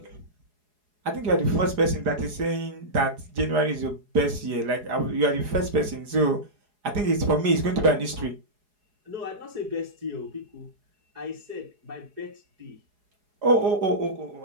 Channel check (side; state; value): left; late; 4.8 ms